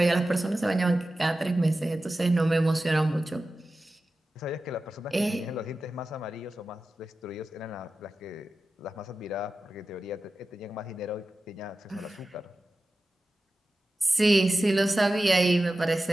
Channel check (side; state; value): both; normal; correlation 0.94